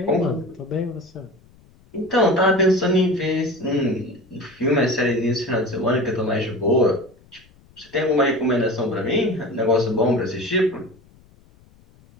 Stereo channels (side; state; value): left; noise; rumble, 29 dB below the sound